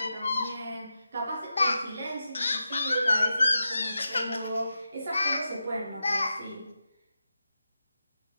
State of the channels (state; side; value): inverted; both; correlation -0.89